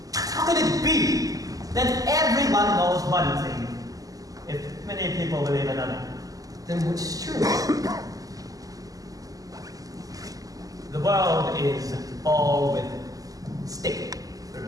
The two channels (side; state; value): left; late; 0.17 ms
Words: How can it be that everyone knows one thing, if many people believe another? Then which is true? The world is all with stick.